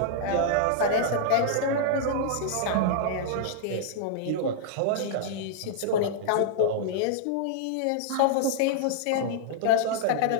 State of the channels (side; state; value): both; different; correlation -0.01